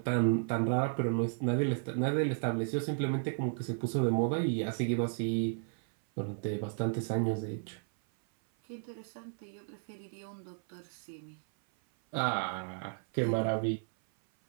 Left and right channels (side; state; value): left; silent; 55 dB below the other